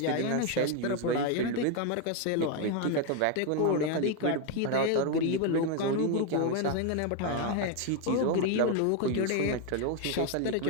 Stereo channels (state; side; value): different; both; correlation 0.01